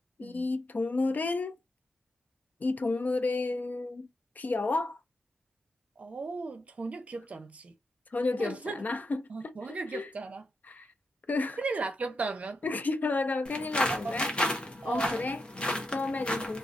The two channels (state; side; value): normal; both; correlation 0.85